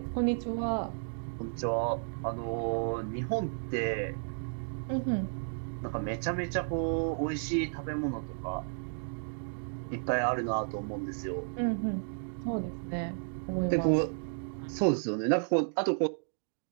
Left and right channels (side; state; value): left; silent; digital silence